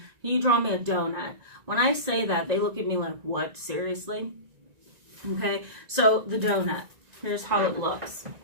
you draw me a donut? When I say that, they look at me like, what? Seriously? Okay, so the donut. Here's how it looks.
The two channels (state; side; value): late; left; 1.9 ms